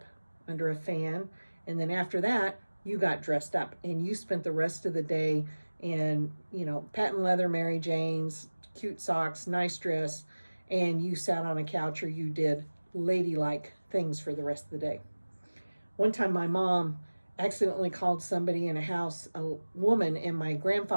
under a fan. And then after that, you got dressed up and you spent the rest of the day in, patent leather Mary Janes, cute socks, nice dress, and you sat on a couch or you did ladylike things for the rest of the day. One time my mom accidentally called somebody in a house a woman, and my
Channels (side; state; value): both; inverted; correlation -1.00